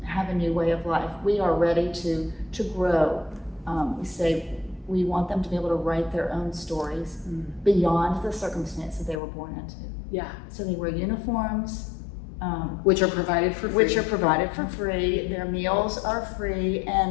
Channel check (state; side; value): drops out; right; at 9.2 s